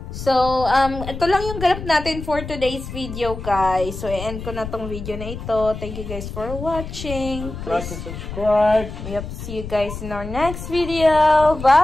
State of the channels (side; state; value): left; noise; rumble, 9 dB below the sound